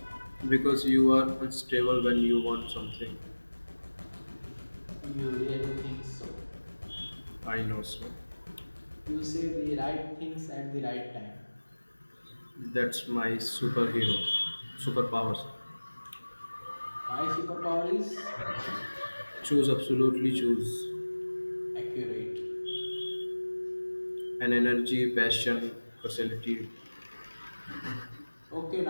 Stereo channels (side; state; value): both; inverted; correlation -1.00